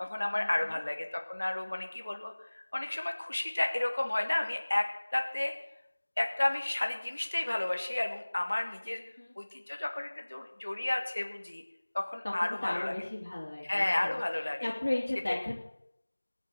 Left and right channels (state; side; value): inverted; both; correlation -1.00